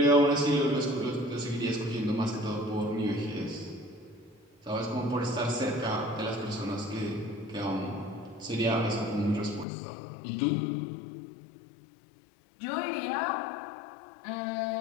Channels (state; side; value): drops out; right; at 9.7 s